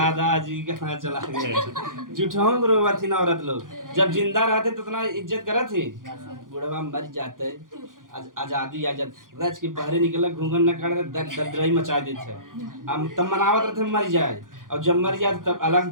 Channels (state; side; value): late; left; 0.89 ms